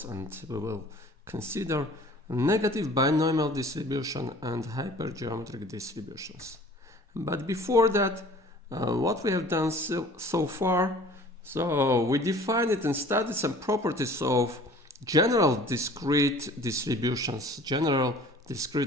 and we will consider negative binomial distribution and hypergeometric distributions. But before that, what we have done so far, so we defined it and studied some properties of general discrete distributions, general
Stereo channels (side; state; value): both; normal; correlation 0.48